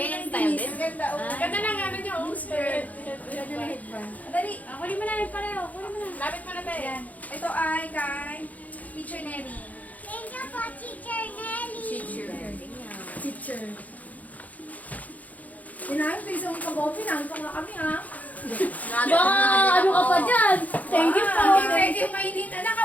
ng style dinis. din? Ang ganda, oh. Ganda ng ano niya, oh, skirt. Ganda na headband. Dali. Ah, kunin mo na yun pareho. Kunin mo na. Lapit mo na tayo. Ayan. Ito ay kay Teacher Nelly. Teacher. Inahin ko isang kagopi na. Ito nga kami ha. Wow, ano ka pa dyan? Thank you po. Hindi pwede yung mainit. Anak,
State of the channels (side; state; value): right; late; 0.076 ms